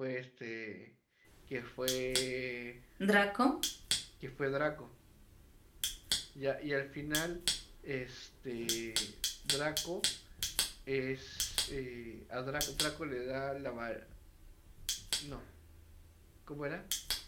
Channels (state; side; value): identical; both; correlation 1.00